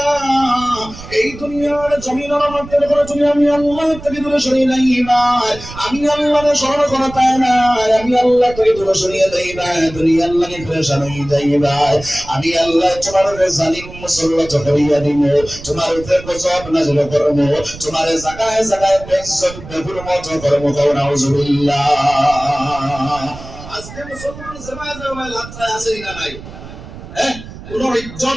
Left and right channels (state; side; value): noise; right; rumble, 15 dB below the sound